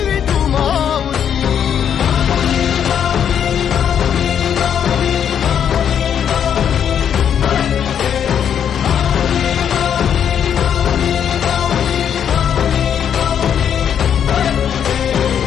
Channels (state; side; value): quieter; right; 8.6 dB